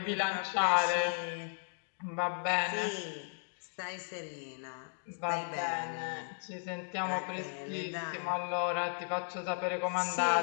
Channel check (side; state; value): right; silent; digital silence